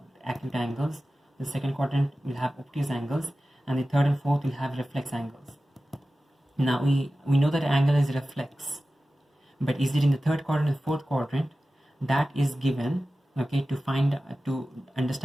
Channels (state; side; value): normal; both; correlation 0.95